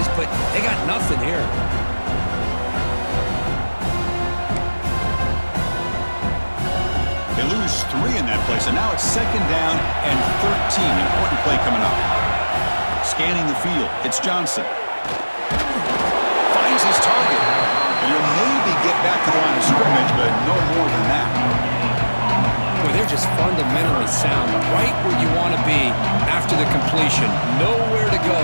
but they got nothing here. They lose 3 in that play, so now it's second down and 13. Important play coming up. Scanning the field, it's Johnson. Finds his target. And he'll maybe get back to the line of scrimmage, but no more than that. Well, they're just fundamentally sound, right where you want to be after the completion. Nowhere to go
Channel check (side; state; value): both; inverted; correlation -1.00